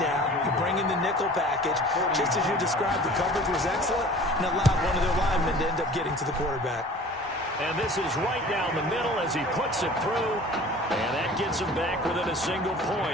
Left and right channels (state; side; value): normal; both; correlation 0.45